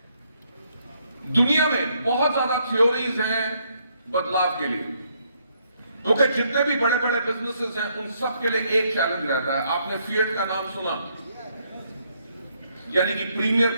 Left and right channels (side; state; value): both; inverted; correlation -0.72